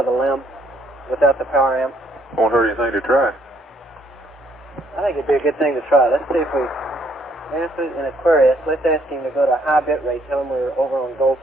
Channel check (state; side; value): normal; both; correlation 0.67